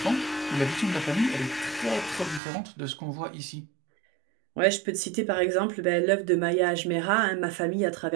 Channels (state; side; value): drops out; left; at 2.4 s